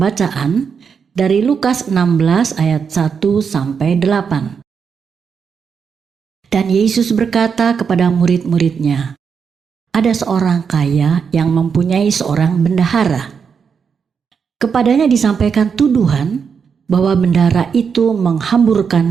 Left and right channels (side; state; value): left; quieter; 6.3 dB